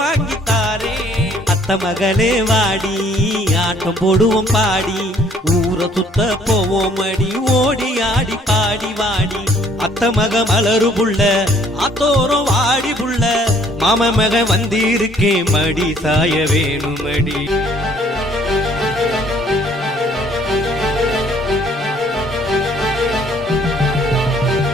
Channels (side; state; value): both; normal; correlation 0.60